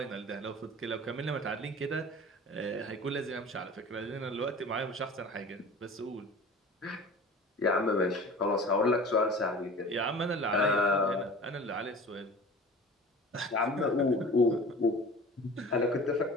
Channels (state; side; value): normal; both; correlation 0.40